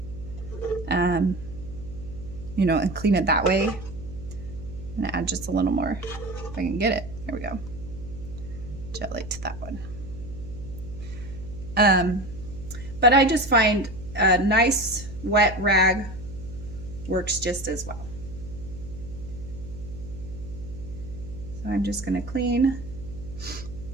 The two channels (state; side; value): noise; right; hum, 12 dB below the sound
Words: you know, and clean it that way. I'm gonna add just a little more if I can get it. There we go. Jelly to that one. But I just find a nice wet rag works just as well. So I'm just gonna clean